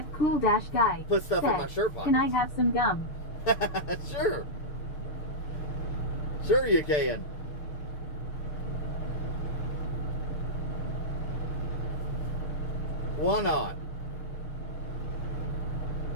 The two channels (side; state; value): right; late; 6.7 ms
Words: Cool-Guy. put stuff in said, my shirt pocket. Can I have some gum? Sure you can. Why not?